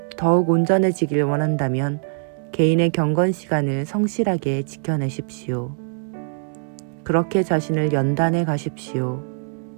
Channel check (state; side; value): silent; left; digital silence